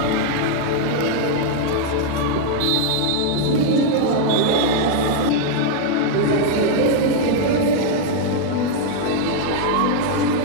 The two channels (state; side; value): different; both; correlation 0.00